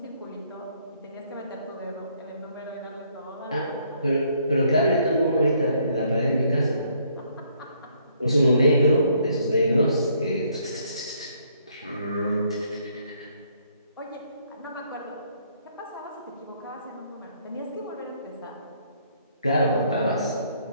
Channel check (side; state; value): both; inverted; correlation -0.67